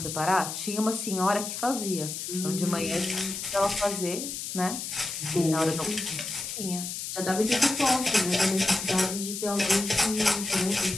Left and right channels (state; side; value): noise; left; hiss, 6 dB below the sound